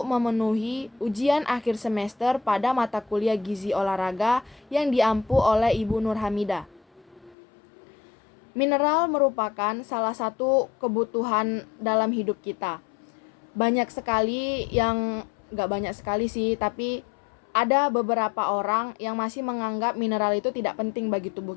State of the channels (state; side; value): drops out; right; at 7.4 s